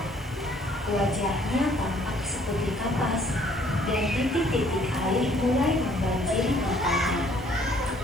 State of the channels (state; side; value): normal; both; correlation 0.61